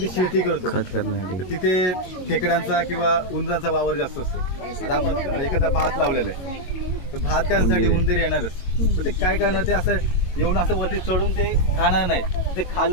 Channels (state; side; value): late; right; 22 ms